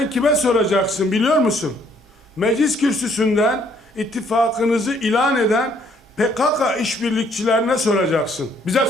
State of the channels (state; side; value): normal; both; correlation 0.65